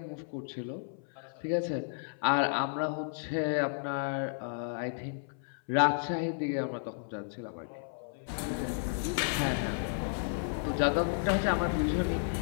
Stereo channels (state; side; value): silent; right; 56 dB below the other